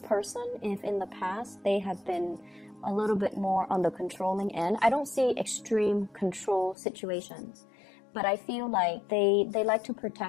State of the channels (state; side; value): drops out; right; at 6.8 s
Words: person, if in the past they have been a little bit more on the controlling end, I don't see extreme control situations, but I feel like they like to